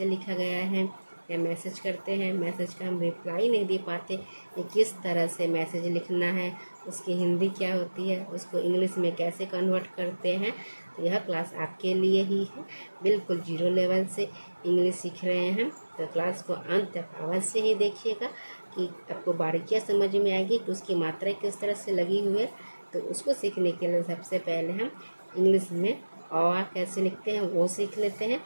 लिखा गया है, या मैसेज करते हैं, मैसेज का हम रिप्लाई नहीं दे पाते कि किस तरह से मैसेज लिखना है, उसकी हिंदी क्या होती है, उसको इंग्लिश में कैसे कन्वर्ट करते हैं। तो यह क्लास आपके लिए ही है। बिल्कुल जीरो लेवल से इंग्लिश सीख रहे हैं तो क्लास को अंत तक अवश्य ही देखिएगा कि आपको बारीकियाँ समझ में आएगी कि उसकी मात्रा किस तरह से लगी हुई है। तो उसको सीखने के लिए सबसे पहले हम इंग्लिश में अ कैसे लिखते हैं वो सीख लेते हैं।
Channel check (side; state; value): both; inverted; correlation -1.00